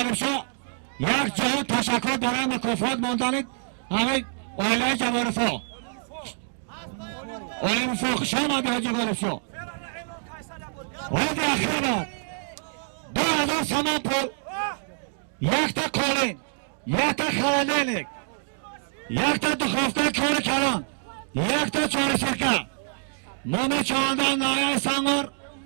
شاه یک جهان تشکر برای مکافات موندنید همین اویلای جبارفو اویلای مفاق شما دی حاجی غالب شاه حاضی اخیر باد 2000 سامان پول یک تا کولین یک تا خلالینlik یک تا دخوفته کار کلان یک تا چوری سیرکه مام چاندان نایه سنگور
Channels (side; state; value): left; silent; digital silence